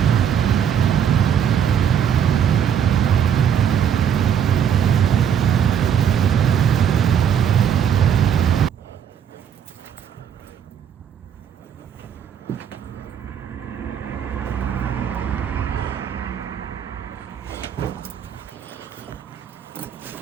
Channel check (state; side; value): quieter; left; 8.5 dB